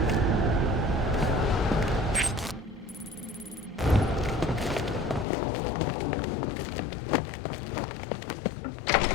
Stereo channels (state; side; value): drops out; right; at 5.2 s